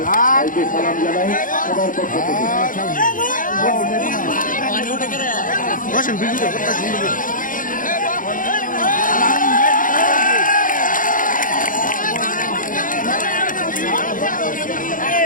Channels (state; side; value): late; right; 0.39 ms